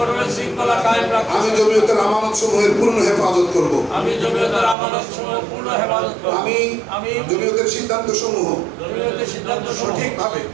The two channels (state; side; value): drops out; left; at 4.8 s